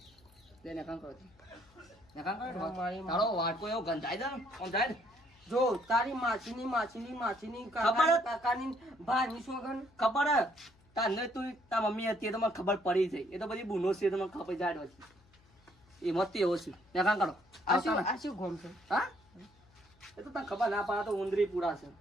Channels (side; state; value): left; noise; hum, 30 dB below the sound